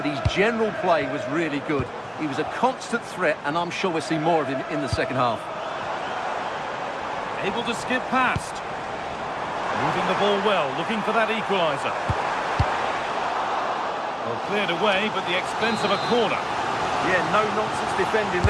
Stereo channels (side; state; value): both; identical; correlation 1.00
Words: his general play was really good. He was a constant threat, and I'm sure we'll see more of him in the second half. Able to skip past. Moving the ball well, looking for that equaliser. Well, cleared away, but the expense of a corner. Yeah, no nonsense defending